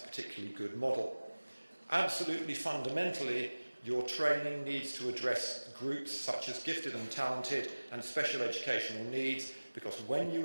particularly good model. Absolutely fundamentally, your training needs to address groups such as gifted and talented and special educational needs, because when you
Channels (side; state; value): both; inverted; correlation -1.00